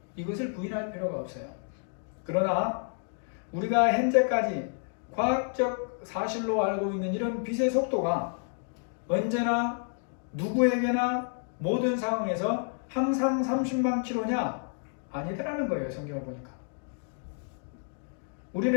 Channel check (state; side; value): silent; right; 58 dB below the other